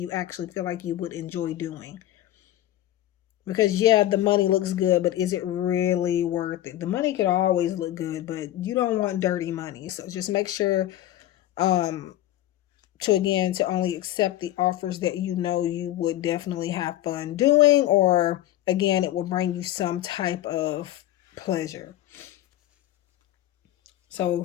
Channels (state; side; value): quieter; right; 13.7 dB